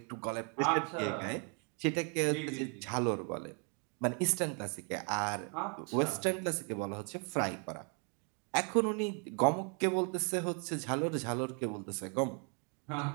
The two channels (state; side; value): quieter; left; 38.5 dB